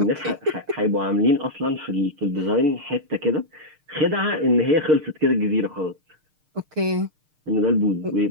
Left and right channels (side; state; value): left; late; 6.5 ms